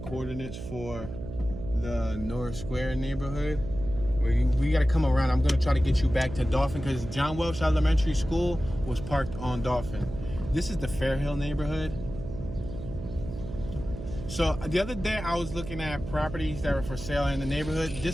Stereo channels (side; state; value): right; noise; hum, 9 dB below the sound